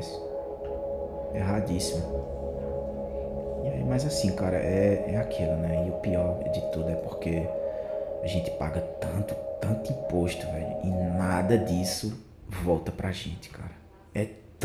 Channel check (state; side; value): identical; both; correlation 1.00